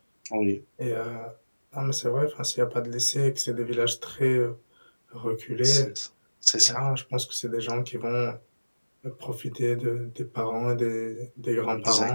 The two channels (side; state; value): both; inverted; correlation -1.00